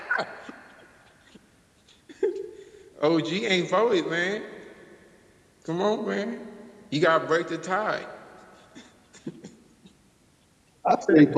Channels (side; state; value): both; identical; correlation 1.00